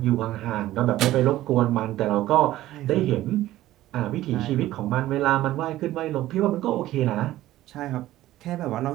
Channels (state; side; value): quieter; left; 15.0 dB